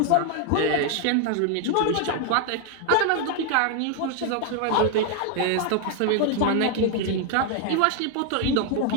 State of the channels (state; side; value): different; both; correlation 0.00